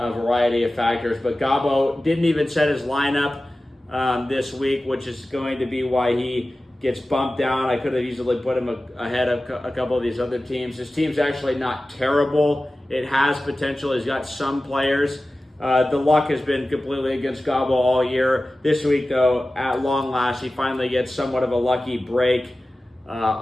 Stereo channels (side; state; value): both; normal; correlation 0.96